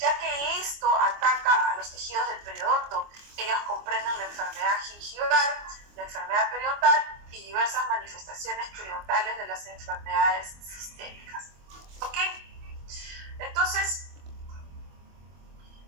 que esto ataca a los tejidos del periodonto. Ellos comprenden la enfermedad gingival, la enfermedad periodontal y diversas manifestaciones periodontales de las enfermedades sistémicas. ¿Ok? Entonces,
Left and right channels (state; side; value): late; left; 24 ms